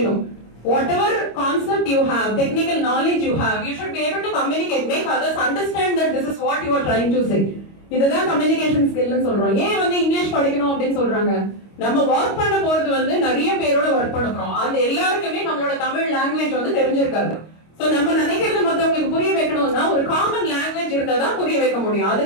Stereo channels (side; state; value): right; late; 25 ms